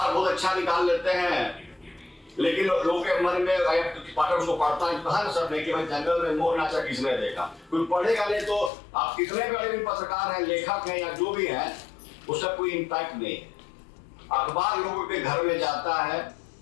बहुत अच्छा निकाल लेते हैं, लेकिन लोगों के मन में पाठक उसको पढ़ता है, कहा सब नहीं कि भाई जंगल में मोर नाचा किसने देखा, कोई पढ़ेगा नहीं। तो आप कितने बड़े भी पत्रकार हैं, लेखक हैं या जो भी हैं, उसका कोई इम्पैक्ट नहीं है। अखबार लोगों के घर में जाता है,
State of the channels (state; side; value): drops out; right; at 8.7 s